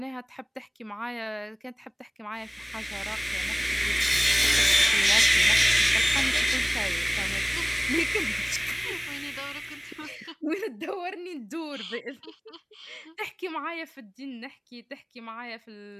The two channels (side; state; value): both; identical; correlation 1.00